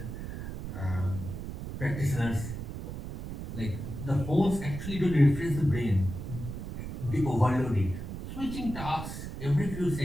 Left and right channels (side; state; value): right; noise; rumble, 7 dB below the sound